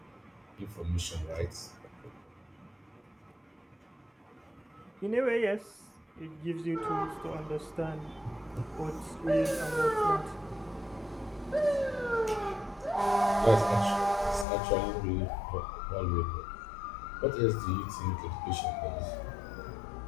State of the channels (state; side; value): drops out; right; at 14.5 s